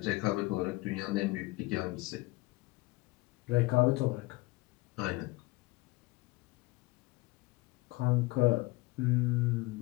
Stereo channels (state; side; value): quieter; right; 22.3 dB